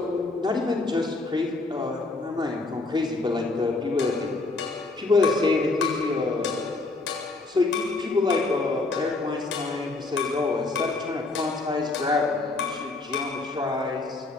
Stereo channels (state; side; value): quieter; right; 3.4 dB